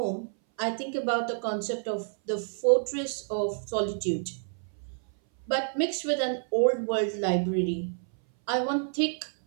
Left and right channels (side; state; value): left; silent; 58 dB below the other